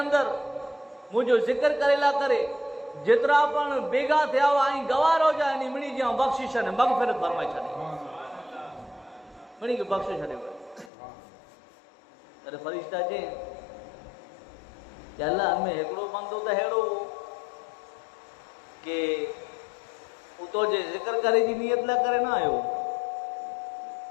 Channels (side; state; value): right; drops out; at 10.9 s